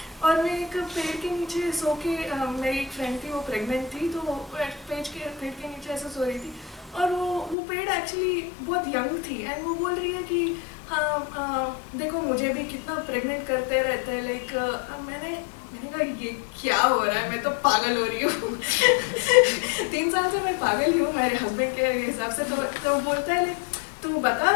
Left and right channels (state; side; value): drops out; right; at 7.6 s